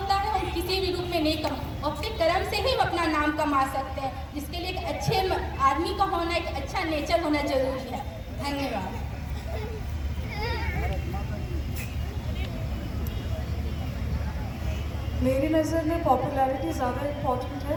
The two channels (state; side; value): identical; both; correlation 1.00